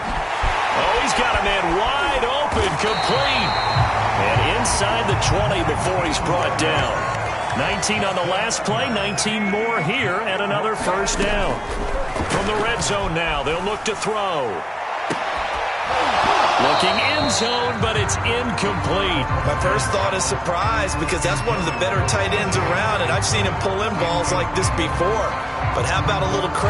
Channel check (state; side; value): identical; both; correlation 1.00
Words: he's got a man wide open, complete. And inside the 20 before he's brought down. 19 on the last play, 19 more here, and another first down. From the red zone now, they'll look to throw. Looking end zone, but it's incomplete. My first thought is surprise because that's one of the better tight ends around, and I've seen him pull in balls like this before. But how about a little